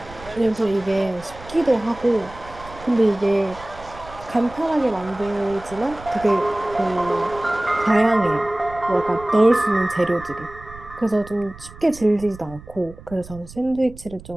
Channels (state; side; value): noise; right; rumble, 18 dB below the sound